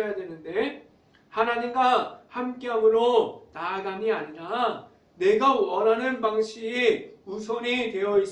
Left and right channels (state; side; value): identical; both; correlation 1.00